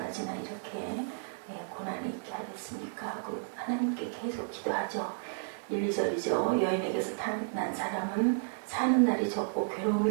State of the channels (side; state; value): left; silent; digital silence